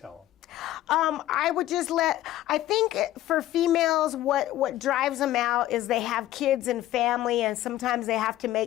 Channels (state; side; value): quieter; right; 14.2 dB